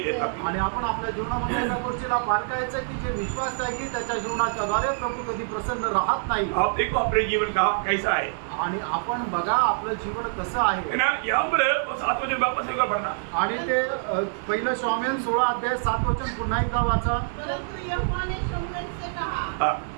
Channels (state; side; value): silent; left; digital silence